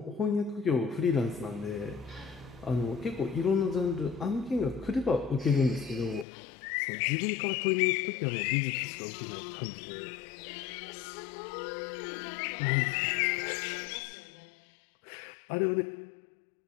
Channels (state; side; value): drops out; right; at 6.2 s